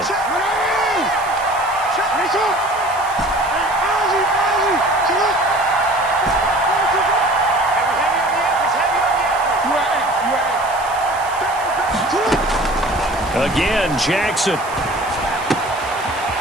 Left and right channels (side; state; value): right; noise; hiss, 17 dB below the sound